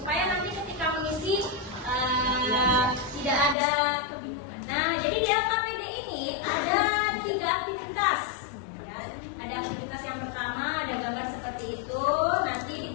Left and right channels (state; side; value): drops out; right; at 3.6 s